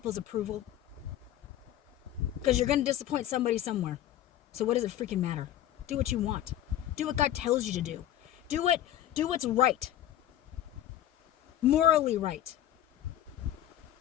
approval. Because you're going to disappoint somebody somewhere. So what does it freaking matter? Do what you want. Do what God tells you to do. Do what's right. morally right.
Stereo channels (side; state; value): right; quieter; 12.0 dB